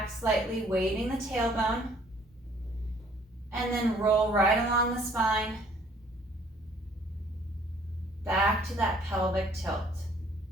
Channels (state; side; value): normal; both; correlation 0.59